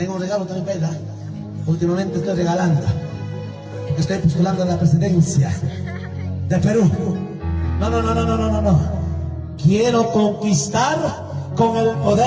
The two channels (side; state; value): both; identical; correlation 1.00